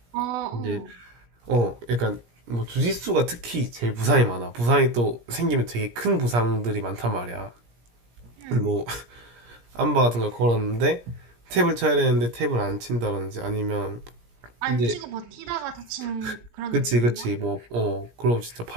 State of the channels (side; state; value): left; late; 17 ms